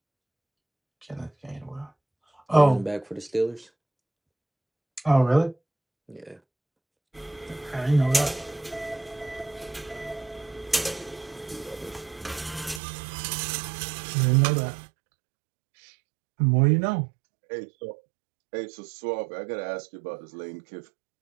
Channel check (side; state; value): left; drops out; at 12.8 s